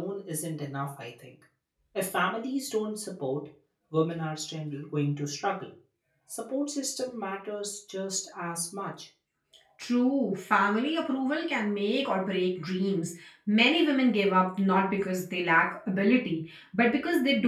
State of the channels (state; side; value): identical; both; correlation 1.00